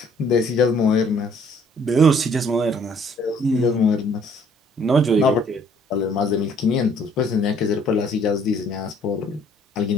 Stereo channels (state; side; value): normal; both; correlation 0.60